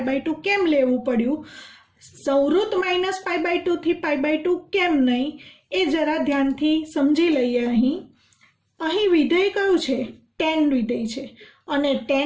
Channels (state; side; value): identical; both; correlation 1.00